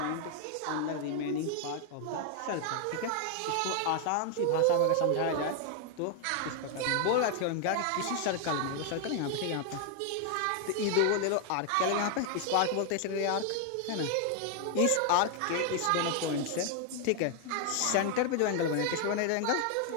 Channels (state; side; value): different; both; correlation 0.00